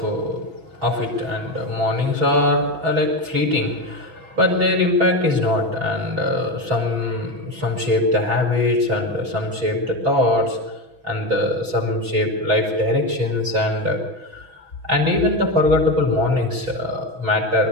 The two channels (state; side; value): late; left; 6.1 ms